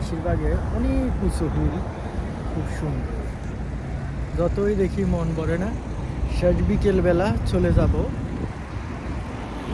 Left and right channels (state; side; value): identical; both; correlation 1.00